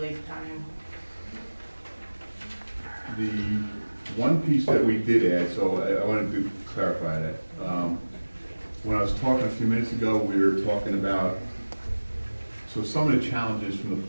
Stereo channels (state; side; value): inverted; both; correlation -1.00